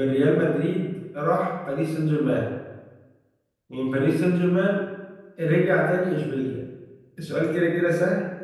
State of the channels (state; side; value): identical; both; correlation 1.00